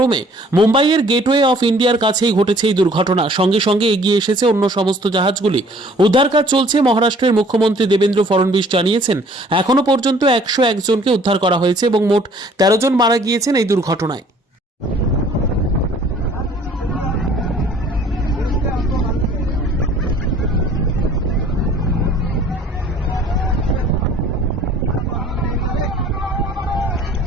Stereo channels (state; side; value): normal; both; correlation 0.55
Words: মুম্বাইয়ের গেটওয়ে অফ ইন্ডিয়ার কাছেই ঘটেছে এই দুর্ঘটনা। সঙ্গে সঙ্গে এগিয়ে এসেছে অন্য সমস্ত জাহাজগুলি। উদ্ধার কাজ চলছে। মহারাষ্ট্রের মুখ্যমন্ত্রী দেবেন্দ্র ফডনবিস জানিয়েছেন, এখনো পর্যন্ত 101 জনকে উদ্ধার করা হয়েছে এবং মোট 13 জন মারা গিয়েছেন এই দুর্ঘটনায়।